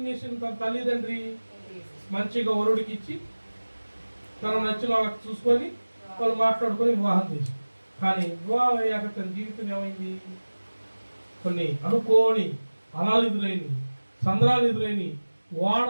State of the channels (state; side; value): inverted; both; correlation -1.00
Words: చేసింది? తన తల్లిదండ్రి మంచిగా వరుడికి ఇచ్చి తన నచ్చిన వాళ్ళకి చూసుకొని వాళ్ళు మాట్లాడుకొని వివాహం చేసి. కానీ వివాహం అయ్యాక తన జీవితం ఏమైంది? కొన్ని అనుకోని అలాలు ఎదురైన, సంద్రాలు ఎదురైన, వాడ